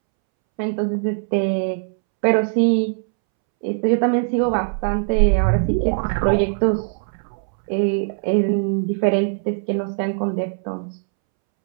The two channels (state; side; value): silent; left; 65 dB below the other